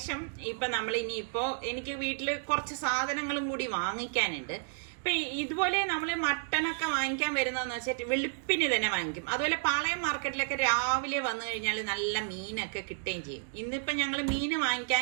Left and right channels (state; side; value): silent; left; digital silence